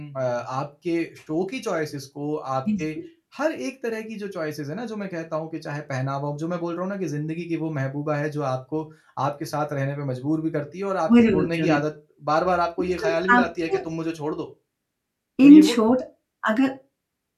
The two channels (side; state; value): both; identical; correlation 1.00